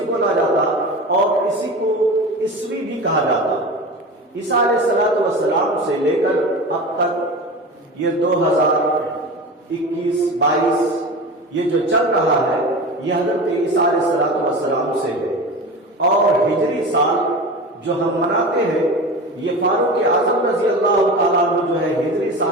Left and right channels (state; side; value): normal; both; correlation 0.30